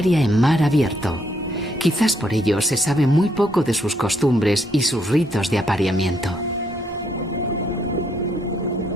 en mar abierto. Quizás por ello se sabe muy poco de sus costumbres y sus ritos de apareamiento.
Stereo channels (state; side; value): normal; both; correlation 0.73